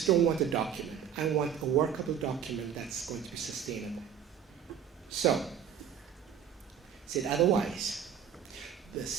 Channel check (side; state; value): left; quieter; 8.4 dB